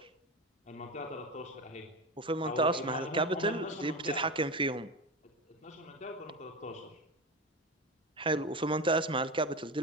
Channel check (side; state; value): both; normal; correlation 0.22